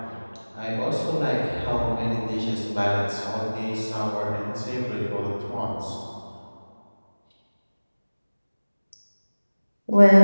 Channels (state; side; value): inverted; both; correlation -1.00